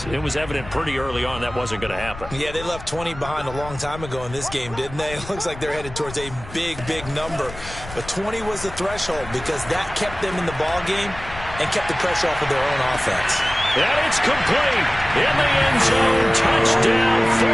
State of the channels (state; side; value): noise; left; rumble, 14 dB below the sound